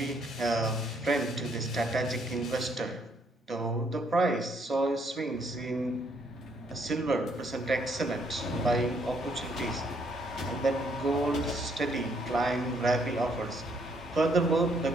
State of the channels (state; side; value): normal; both; correlation 0.69